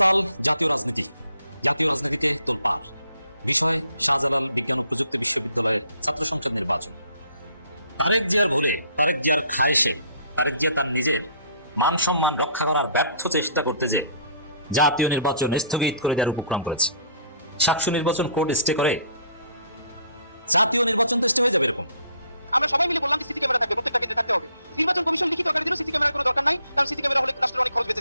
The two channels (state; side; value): inverted; both; correlation -0.60